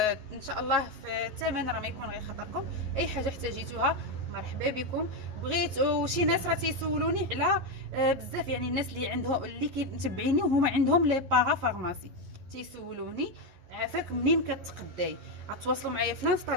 ان شاء الله في الثمن راه ما يكون غير خاطركم. اي حاجه احتاجيتوها مرحبا بكم. بغيت وشي ناس راه تيسولوني على بزاف، يعني الناس اللي عندهم اللي كيتبعيني وهما عندهم لي باغا فارماسي تيسولوني عافاك منين كتقداي. غتواصلوا معايا في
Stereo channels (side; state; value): left; late; 11 ms